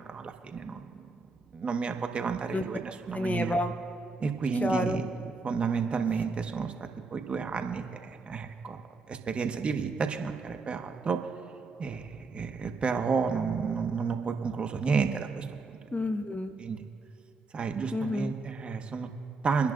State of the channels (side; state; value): left; quieter; 3.8 dB